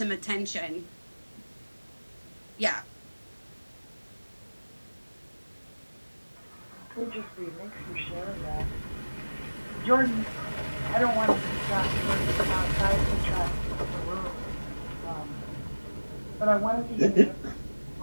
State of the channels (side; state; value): both; inverted; correlation -1.00